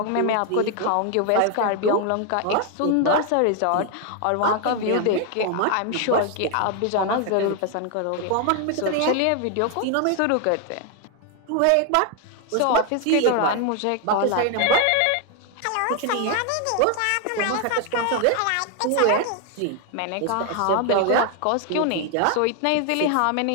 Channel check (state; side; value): different; both; correlation 0.00